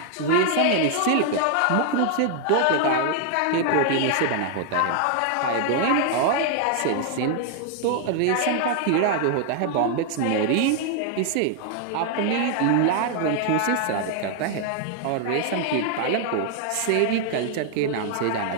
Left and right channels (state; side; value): different; both; correlation 0.00